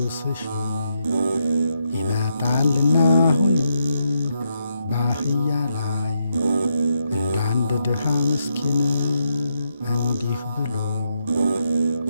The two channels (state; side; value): inverted; both; correlation -0.81